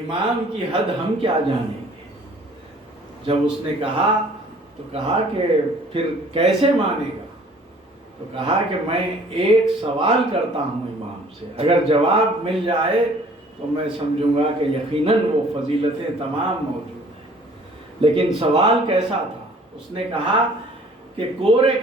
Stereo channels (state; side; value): normal; both; correlation 0.54